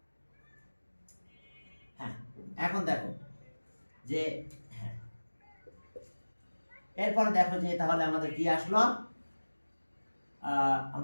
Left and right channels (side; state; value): both; inverted; correlation -1.00